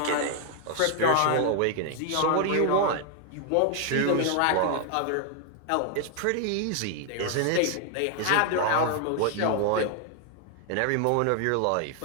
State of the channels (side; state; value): both; different; correlation 0.00